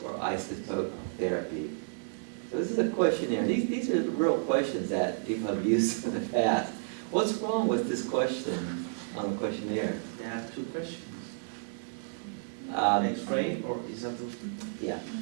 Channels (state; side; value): silent; left; 57 dB below the other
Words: isotope therapy? So this is a questionnaire. These are real questions that people have used in the past. What's wrong with this question on the questionnaire? There are two questions. X-ray or isotope? Yeah.